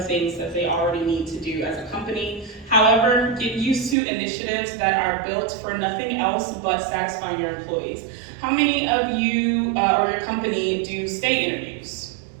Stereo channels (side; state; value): left; drops out; at 4.0 s